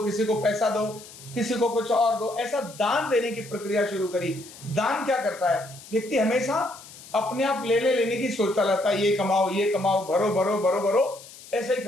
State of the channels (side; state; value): left; noise; hiss, 18 dB below the sound